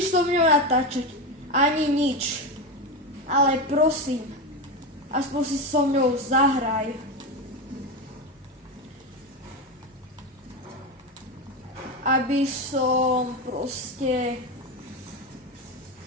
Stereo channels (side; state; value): both; normal; correlation 0.16